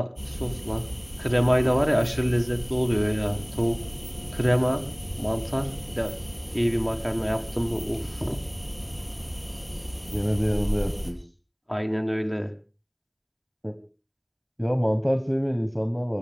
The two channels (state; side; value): identical; both; correlation 1.00